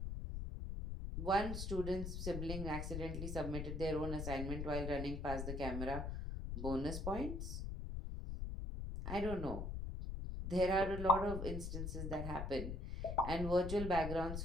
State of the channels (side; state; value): left; noise; rumble, 4 dB below the sound